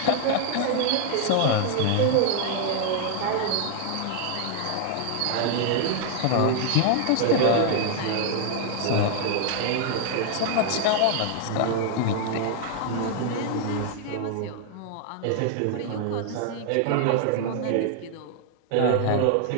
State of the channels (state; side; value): different; both; correlation 0.00